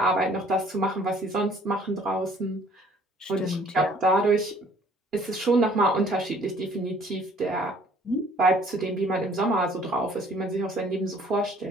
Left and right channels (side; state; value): both; normal; correlation 0.57